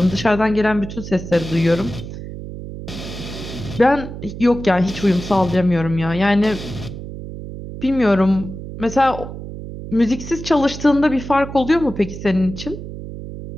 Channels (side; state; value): right; noise; hum, 10 dB below the sound